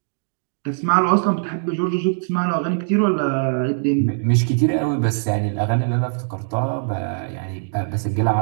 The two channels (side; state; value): left; silent; digital silence